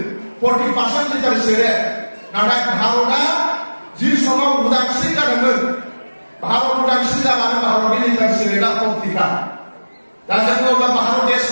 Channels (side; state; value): both; inverted; correlation -1.00